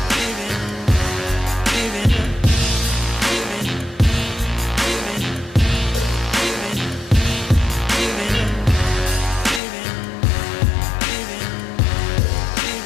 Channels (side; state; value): right; drops out; at 9.6 s